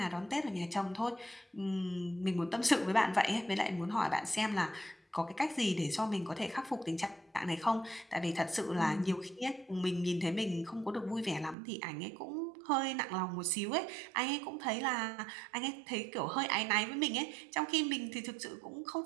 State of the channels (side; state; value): left; drops out; at 11.6 s